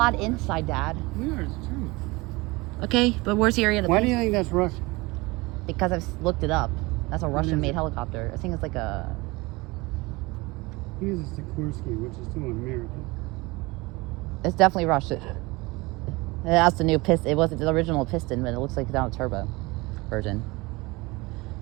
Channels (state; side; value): quieter; left; 23.4 dB